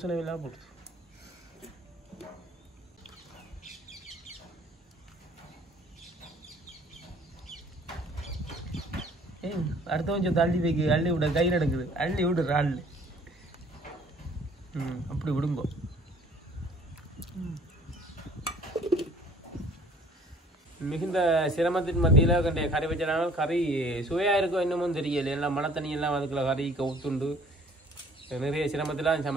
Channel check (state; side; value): normal; both; correlation 0.55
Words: எல்லாம் போடுது. அடுத்த கொஞ்சம் தள்ளி வைக்க. அள்ளி விட கை நடக்குது. அள்ளி விடுற அள்ளி அப்படி விடுங்கோ. மிகுந்த சிரமத்தின் மத்தியில் கண்ட கறி வச்சனால கறி சுவையாக இருக்கும் இன்னமும் தெரியல. எல்லாம் மழை தண்ணியெல்லாம் அதுக்குள்ள கறி கவுத்துண்டு நிறைய சிரமத்தில்